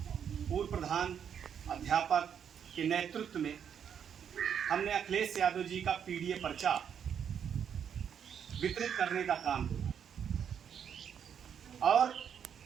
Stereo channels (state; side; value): quieter; left; 8.1 dB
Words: पूर्व प्रधान अध्यापक के नेतृत्व में हमने अखिलेश यादव जी का पीडीए पर्चा वितरित करने का काम किया और